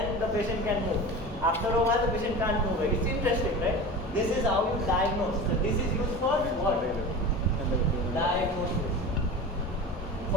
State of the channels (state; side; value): normal; both; correlation 0.32